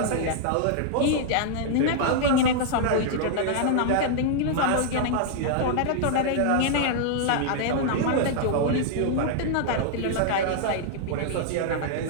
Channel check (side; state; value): both; different; correlation -0.01